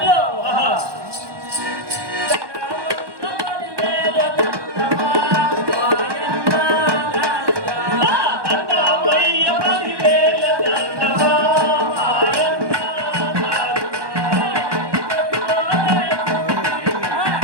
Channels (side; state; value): left; late; 1.2 ms